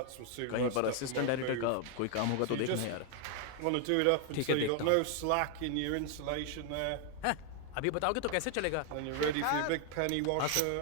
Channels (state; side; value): different; both; correlation 0.00